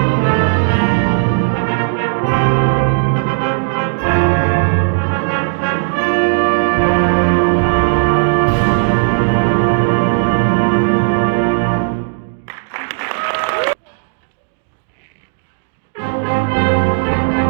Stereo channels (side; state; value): left; silent; digital silence